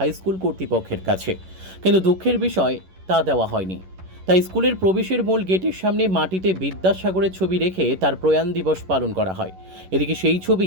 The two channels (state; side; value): late; left; 11 ms